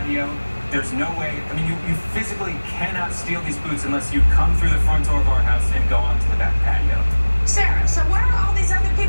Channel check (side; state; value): both; inverted; correlation -1.00